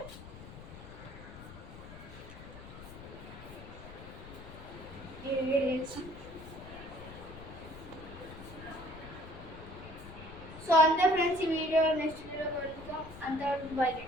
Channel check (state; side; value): noise; left; rumble, 14 dB below the sound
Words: సో అంతే ఫ్రెండ్స్, ఈ వీడియో నెక్స్ట్ వీడియో కలుద్దాం. అంతవరకు బై.